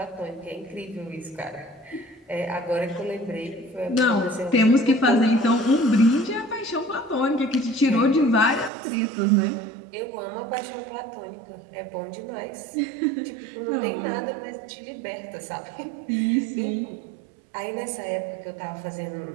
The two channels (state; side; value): drops out; left; at 8.7 s